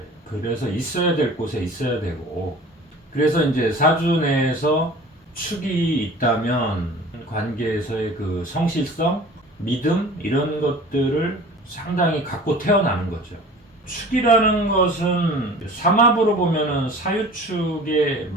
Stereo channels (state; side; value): normal; both; correlation 0.43